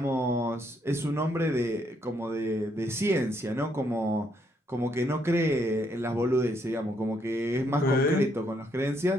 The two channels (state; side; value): normal; both; correlation 0.73